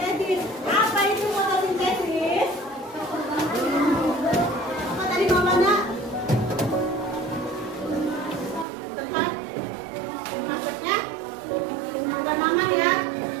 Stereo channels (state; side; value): drops out; left; at 8.7 s